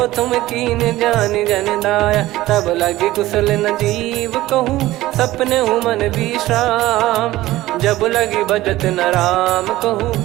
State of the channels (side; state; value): left; quieter; 16.6 dB